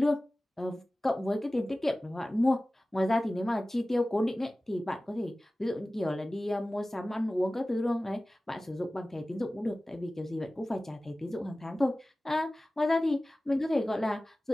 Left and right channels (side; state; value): both; normal; correlation 0.97